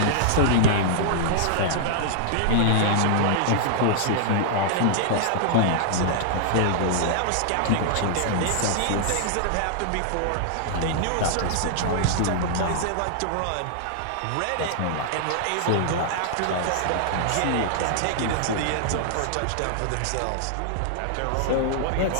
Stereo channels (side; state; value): both; different; correlation -0.01